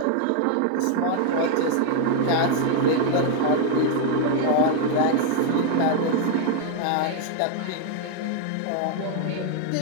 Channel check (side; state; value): both; different; correlation 0.00